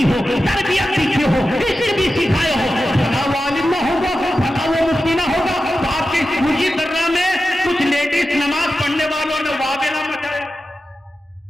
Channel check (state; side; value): normal; both; correlation 0.92